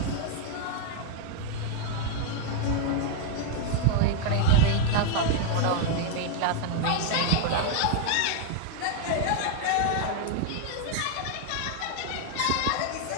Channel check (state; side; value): different; both; correlation 0.00